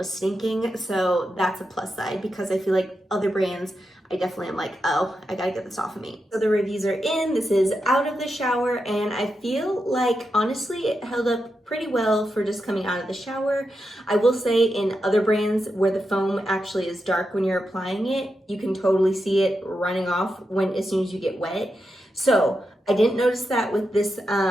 stinking. So that's a plus side because I feel like other brands, I definitely am like, oh, I gotta get this off of me. So the reviews are in, this is out of the shower, and I feel like, honestly, it held up pretty well for just coming out of the shower. I will say in other brands where the foam actually is dark when you're applying it, you can totally see it running off as soon as you get wet. So I didn't notice that with this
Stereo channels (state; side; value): normal; both; correlation 0.87